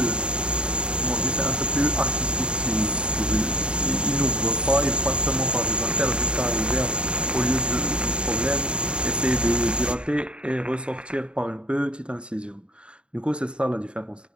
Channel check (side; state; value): left; late; 0.053 ms